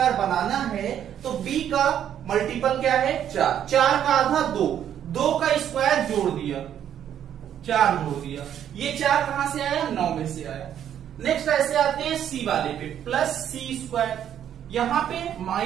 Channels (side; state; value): left; quieter; 9.9 dB